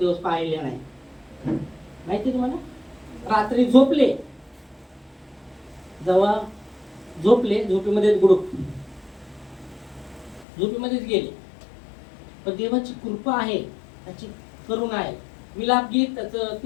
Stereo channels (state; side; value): drops out; right; at 10.5 s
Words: पाहिले नाही. माहिती तुम्हाला? रात्री झोपले, जेव्हा झोपले, झोपेमध्ये गुडूप झोपेमध्येच गेले. पण देवाची कृपा आहे, त्याची करुणा आहे. विलाप गीत त्याचं